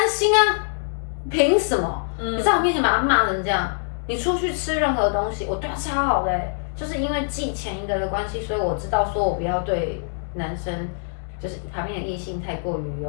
心啊，凭什么？你在我面前把他骂成这样，你出去吃任何东西，我对他超好的就是因为记前一个的关系，所以我知道说我不要对男生，就是旁边的异性太过于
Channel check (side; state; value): right; silent; digital silence